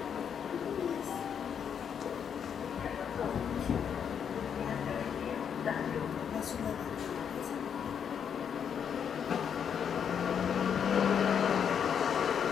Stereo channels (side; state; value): right; quieter; 7.8 dB